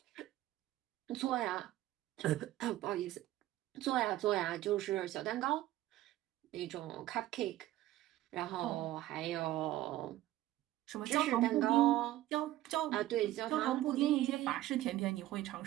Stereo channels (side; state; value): left; quieter; 14.9 dB